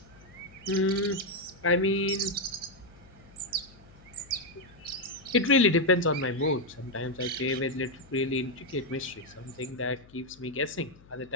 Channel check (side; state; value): left; noise; hum, 24 dB below the sound